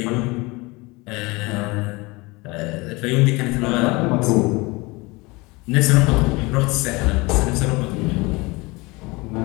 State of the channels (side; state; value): right; quieter; 24.4 dB